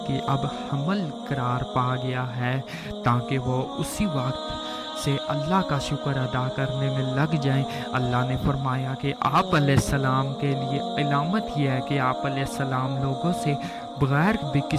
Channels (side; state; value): both; identical; correlation 1.00